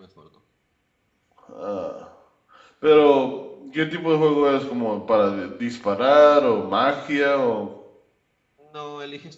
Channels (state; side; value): identical; both; correlation 1.00